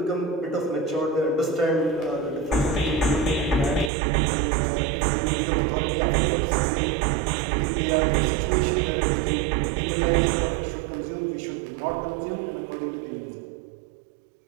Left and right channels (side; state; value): left; drops out; at 3.9 s